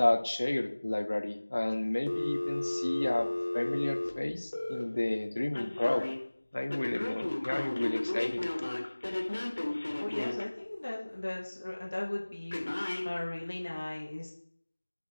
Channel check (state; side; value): inverted; both; correlation -1.00